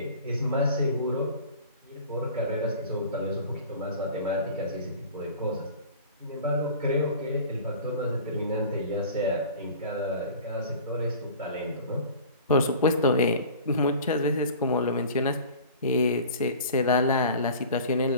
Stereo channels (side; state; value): both; inverted; correlation -0.42